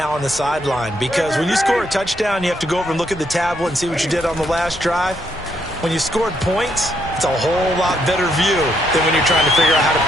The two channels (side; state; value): both; normal; correlation 0.75